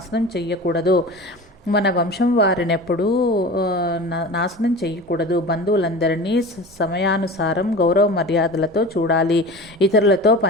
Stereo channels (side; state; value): both; normal; correlation 0.34